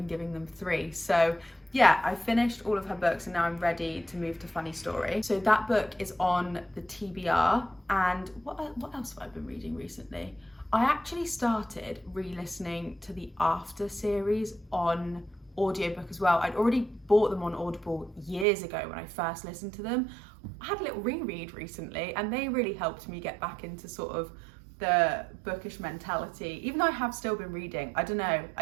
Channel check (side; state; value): left; drops out; at 18.4 s